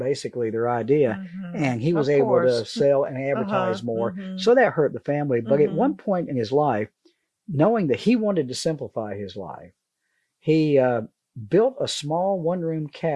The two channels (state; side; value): identical; both; correlation 1.00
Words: their idea, and he was able to sell and advertise more. So that hurt the family. But at one point in his life, knowing that he wanted to simplify his life, he built a small one-room